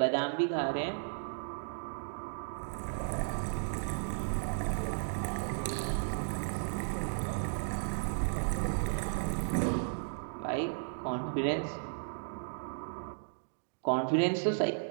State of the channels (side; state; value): left; silent; digital silence